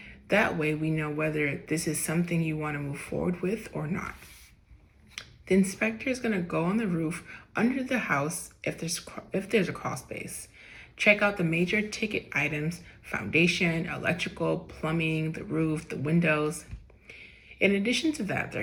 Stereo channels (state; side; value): identical; both; correlation 1.00